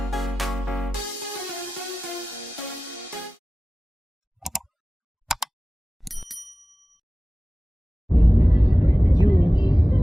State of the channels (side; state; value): both; normal; correlation 0.96